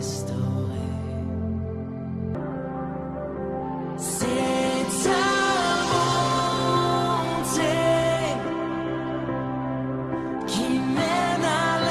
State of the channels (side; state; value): both; identical; correlation 1.00